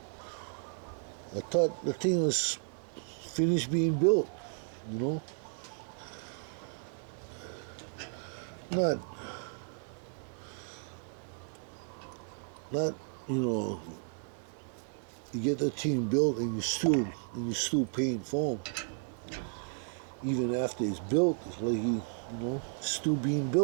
I thought the thing was finished being built. You know, not you get the thing built and you still paying for them. Even after it's built, it's like still being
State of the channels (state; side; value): silent; left; 55 dB below the other